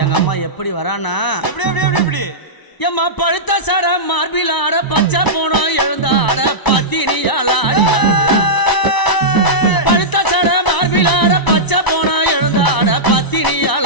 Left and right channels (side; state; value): right; late; 1.0 ms